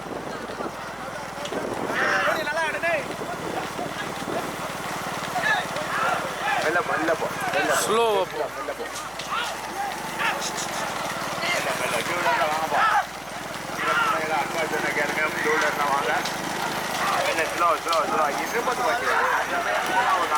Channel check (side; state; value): left; noise; hum, 24 dB below the sound